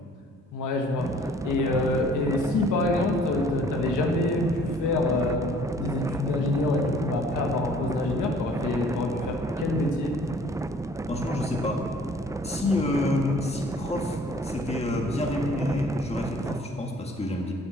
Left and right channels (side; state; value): both; normal; correlation 0.55